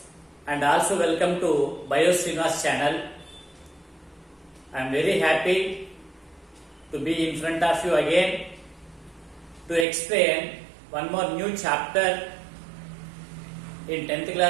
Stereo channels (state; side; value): drops out; left; at 9.9 s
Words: and also welcome to Srinivas channel. I am very happy to be in front of you again to explain one more new chapter in 10th